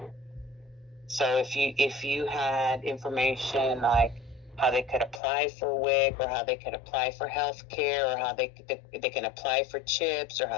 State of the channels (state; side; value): drops out; right; at 5.2 s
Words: So if you had information like how they could apply for WIC, or how they could apply for health care, or how they can apply for CHIPS, or